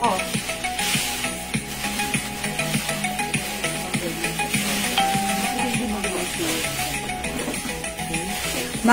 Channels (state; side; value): identical; both; correlation 1.00